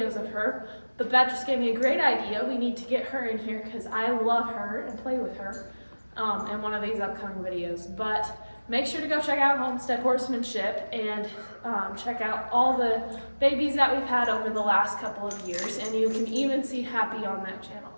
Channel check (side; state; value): both; inverted; correlation -1.00